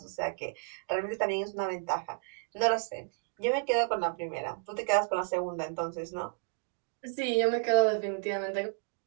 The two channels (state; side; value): silent; left; digital silence